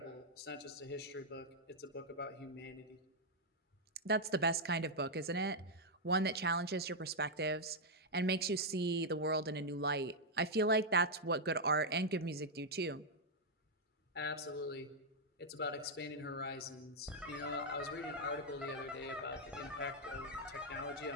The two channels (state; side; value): normal; both; correlation -0.02